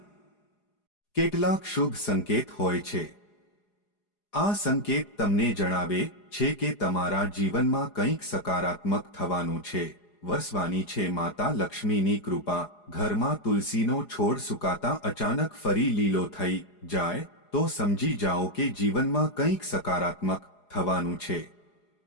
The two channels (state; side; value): late; right; 4.9 ms